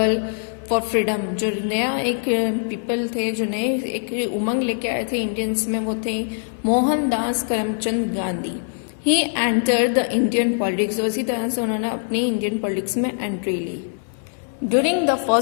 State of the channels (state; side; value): silent; right; digital silence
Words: for freedom, जो नया एक पीपल थे, जो नए एक उमंग लेके आए थे इंडियंस में, वो थे Mohandas Karamchand Gandhi. He entered the Indian politics, उसी तरह से उन्होंने अपनी इंडियन पॉलिटिक्स में एंट्री ली. During the